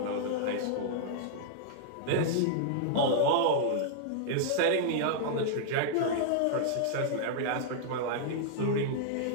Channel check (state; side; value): different; both; correlation -0.01